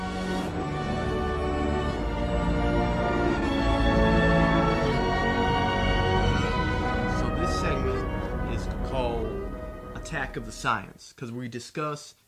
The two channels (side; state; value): both; identical; correlation 1.00